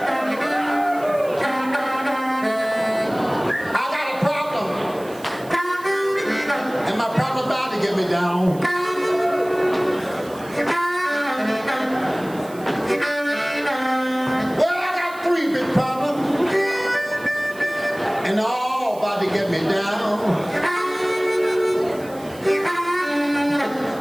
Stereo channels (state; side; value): noise; right; hiss, 21 dB below the sound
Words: I got a problem, and my problem about to get me down. Well, I got 3 big problems, and they're all about to get me down.